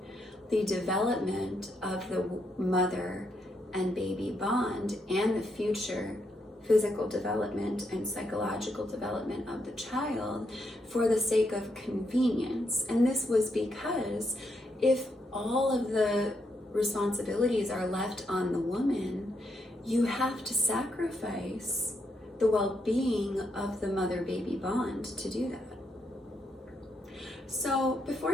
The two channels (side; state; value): both; normal; correlation 0.79